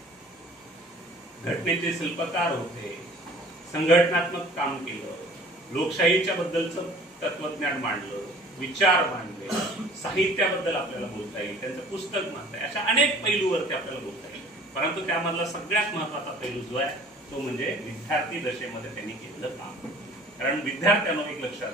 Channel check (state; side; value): normal; both; correlation 0.49